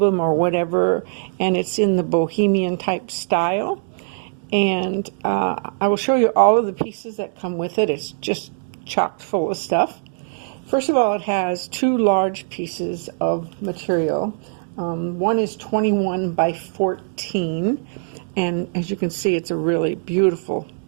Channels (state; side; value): silent; left; digital silence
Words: or whatever, and it's in the bohemian type style. And I will show you all of the pieces that come with it. It's just chock full of stuff. First of all, it has two large pieces of material. One is 21 by 14, and as you can see, it's a really beautiful